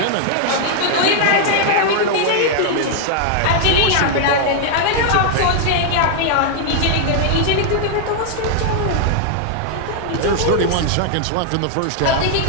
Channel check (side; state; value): both; different; correlation -0.01